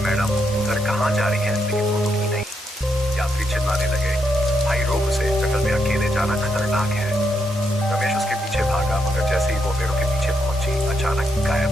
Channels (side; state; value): both; normal; correlation 0.80